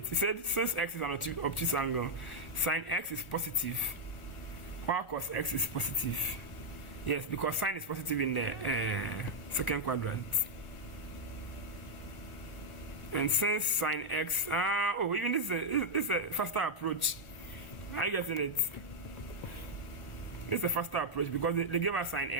It said since x is an obtuse angle, sine x is positive, while cos x is positive. Yes, because sine is positive in the second quadrant. And since sine x, even this is a faster approach. Are you getting it? This is a faster approach because they gave us sine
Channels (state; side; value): late; right; 1.4 ms